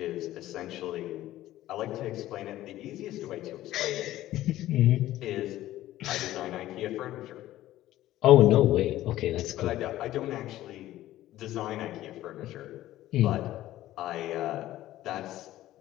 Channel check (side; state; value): right; quieter; 14.6 dB